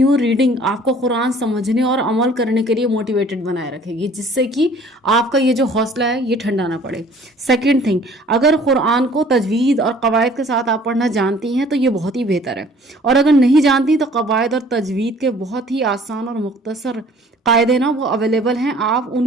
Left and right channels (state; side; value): normal; both; correlation 0.53